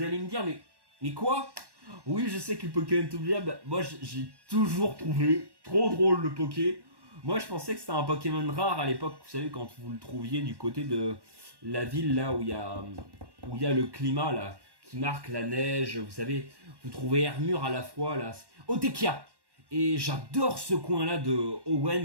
allez me dire mais quoi? Oui, je sais que le Pokémon est oubliable. Moi j'ai toujours trouvé trop drôle le Poké. Moi je pensais que c'était un Pokémon rare à l'époque. Vous savez quand vous le trouviez du côté de la ville là où il y a le climat là qui marque la neige. Vous savez, vous trouvez Hermure à la fois là. Otekia. Et j'adore ce coin-là de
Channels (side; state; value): left; late; 1.1 ms